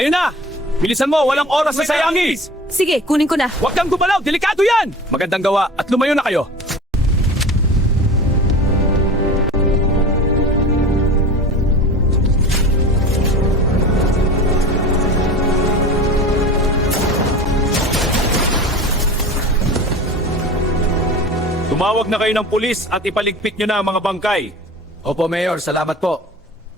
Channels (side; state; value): both; normal; correlation 0.36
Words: na! Bilisan mo, walang oras na sayangin! Sige, kunin ko na. Huwag kang gumalaw, delikado yan! Magandang gawa at lumayo na kayo! Tumawag na kayo ng pulis at ipaligpit nyo na ang mga bangkay. Opo, Mayor. Salamat po.